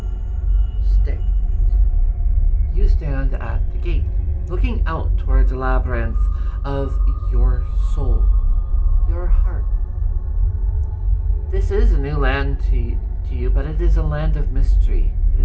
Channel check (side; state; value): both; identical; correlation 1.00